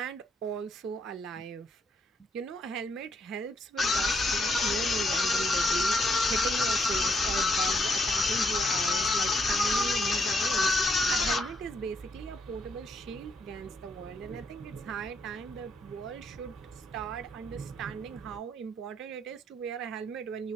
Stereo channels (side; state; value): both; normal; correlation 0.75